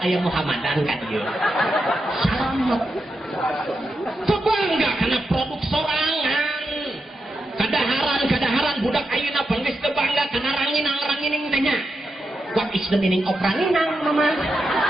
Muhammadan ka ieu selamat kebangga karena produk sorangan kadaharan budak ayeuna bangges teu bangga kana ranginang tanya what is the meaning of ranginang mama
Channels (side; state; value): both; normal; correlation 0.87